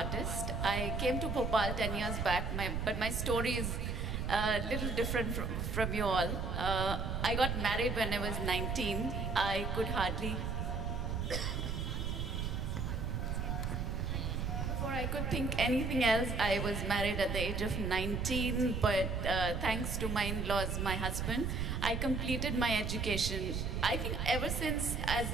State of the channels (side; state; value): right; noise; rumble, 1 dB below the sound